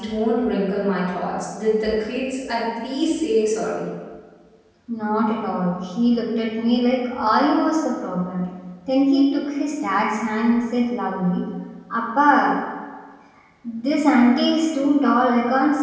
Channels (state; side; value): identical; both; correlation 1.00